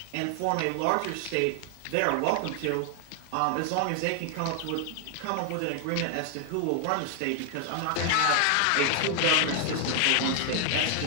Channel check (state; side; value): different; both; correlation 0.00